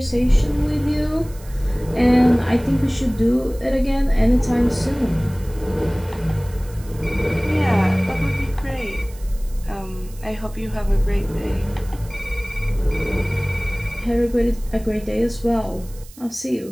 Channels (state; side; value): noise; right; hiss, 22 dB below the sound